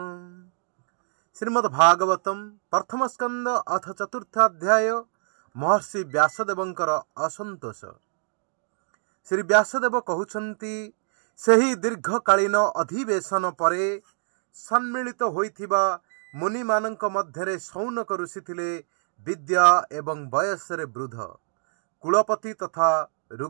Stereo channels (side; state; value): left; silent; digital silence